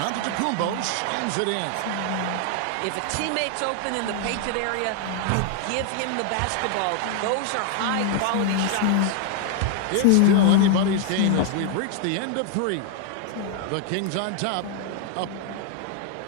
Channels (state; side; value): different; both; correlation 0.00